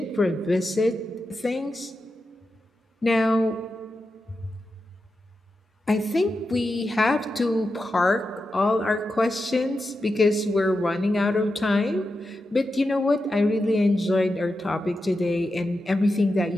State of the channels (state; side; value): normal; both; correlation 0.89